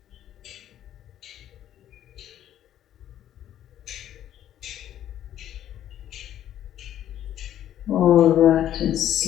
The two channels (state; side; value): quieter; right; 11.4 dB